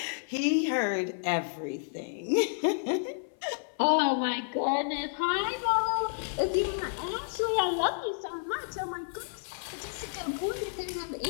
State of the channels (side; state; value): right; silent; 57 dB below the other